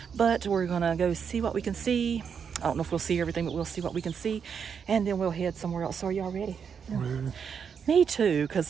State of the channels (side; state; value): left; quieter; 6.9 dB